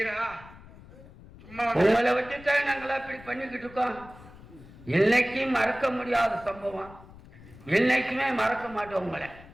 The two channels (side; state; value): left; noise; rumble, 20 dB below the sound